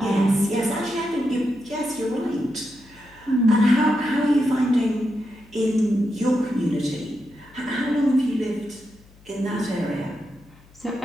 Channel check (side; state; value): left; noise; hum, 26 dB below the sound